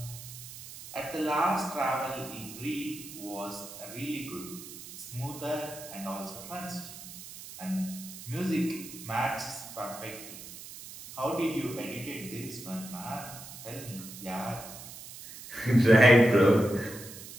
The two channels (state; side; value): noise; right; hiss, 13 dB below the sound